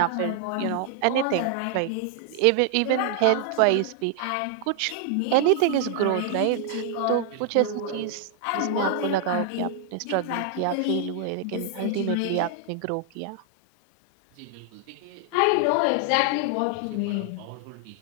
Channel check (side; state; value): both; different; correlation 0.00